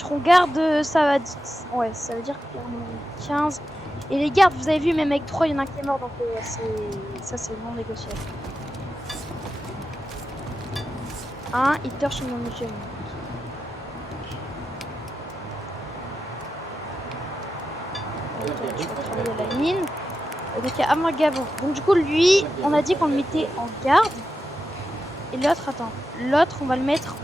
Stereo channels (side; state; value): both; normal; correlation 0.89